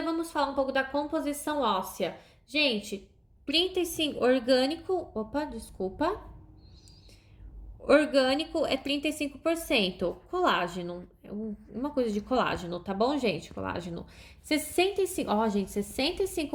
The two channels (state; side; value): identical; both; correlation 1.00